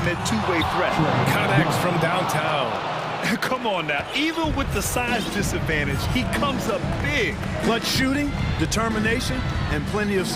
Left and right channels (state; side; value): identical; both; correlation 1.00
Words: two-way threat. Connects from downtown. Come on now, even with the size disadvantage, he comes up big. Clutch shooting, determination, and plenty of